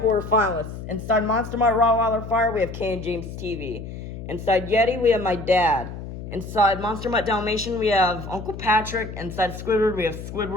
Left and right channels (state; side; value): noise; left; hum, 10 dB below the sound